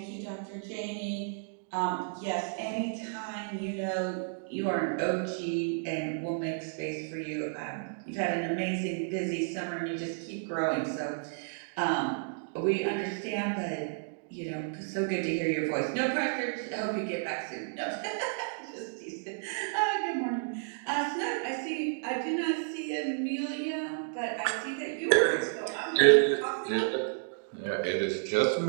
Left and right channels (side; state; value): left; silent; digital silence